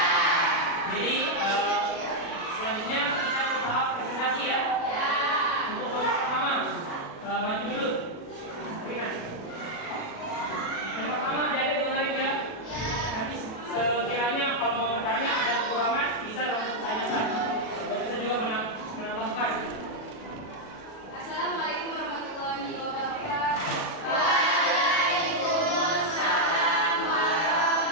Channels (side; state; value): right; late; 37 ms